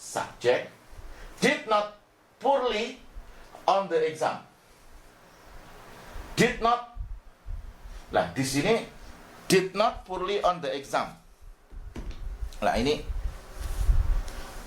Did not poorly on the exam. Did not. Nah, di sini did not poorly on the exam. Nah, ini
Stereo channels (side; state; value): both; identical; correlation 1.00